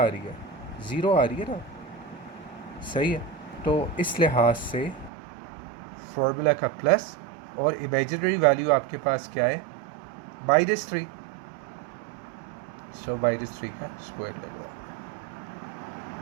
आ रही है, 0 आ रही है ना। सही है, तो इस लिहाज से फॉर्मूला का प्लस और इमेजिनरी वैल्यू आपके पास क्या है, -3। सो -3 का स्क्वायर ले लो।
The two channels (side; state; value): left; drops out; at 5.1 s